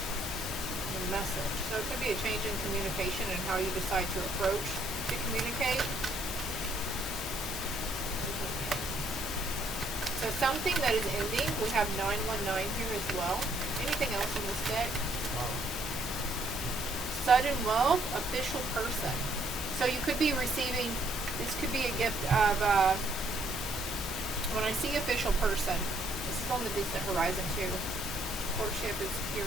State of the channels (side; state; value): right; noise; hiss, 14 dB below the sound